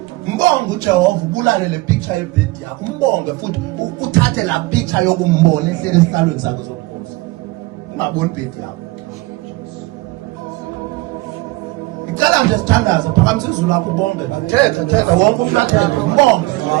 Mbonga uJehova ubulale le picture yebed yakho. Umbonge futhi uthathe la picture yokumbona ehlele esihlalweni sakho sobukhosi. Ungaboni ibed yakho. Ngicela nje sithandaze phakamisa izulu lakho ubonge. Thetha wonke umuntu athethe umbonge.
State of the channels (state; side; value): quieter; left; 21.3 dB